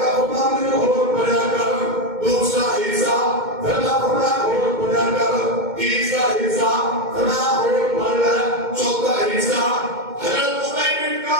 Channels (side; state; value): left; late; 2.2 ms